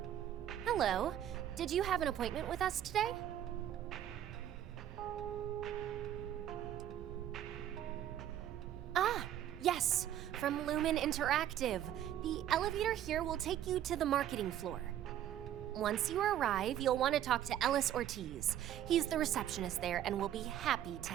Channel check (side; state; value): left; quieter; 11.3 dB